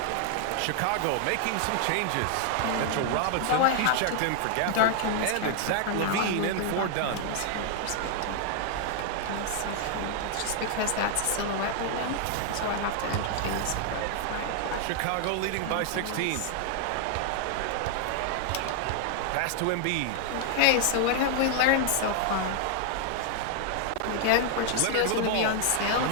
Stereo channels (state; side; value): different; both; correlation 0.00